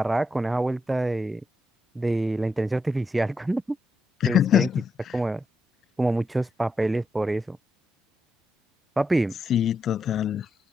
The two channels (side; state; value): both; normal; correlation 0.83